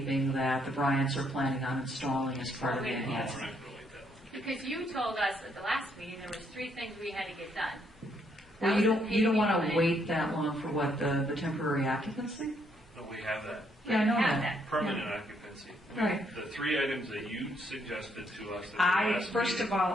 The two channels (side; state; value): both; normal; correlation 0.72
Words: that the Bryants are planning on installing as part of the enhancement. Because you told us at the last meeting there was 3 things we had to get done. Well, That you was don't the want paving to wait that long for what, the temporary occupancy? No, we have that. Yeah, I know have that. Permanent occupancy. Right. The 3 items that you suggested to us at the I, last first meeting. of all,